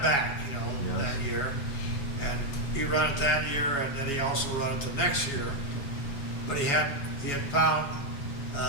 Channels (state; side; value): late; right; 7.2 ms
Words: back, you know, Yeah. that year. And he run it that year, and then he also run it the next year. But he had found